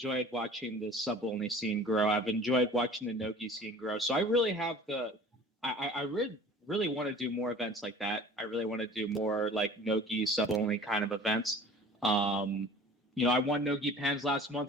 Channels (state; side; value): normal; both; correlation 0.44